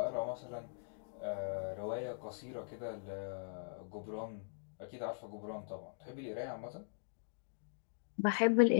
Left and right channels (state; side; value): silent; right; digital silence